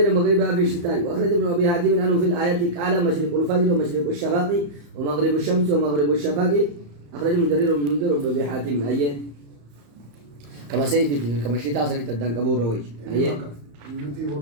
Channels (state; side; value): late; left; 35 ms